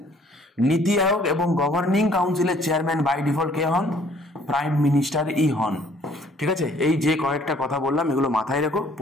নীতি আয়োগ এবং গভর্নিং কাউন্সিলের চেয়ারম্যান বাই ডিফল্ট কে হন? প্রাইম মিনিস্টারই হন, ঠিক আছে? এই যে কয়েকটা কথা বললাম এগুলো মাথায় রেখো,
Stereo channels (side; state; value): both; normal; correlation 0.59